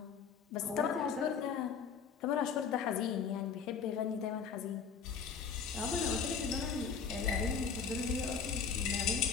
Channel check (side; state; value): right; quieter; 6.3 dB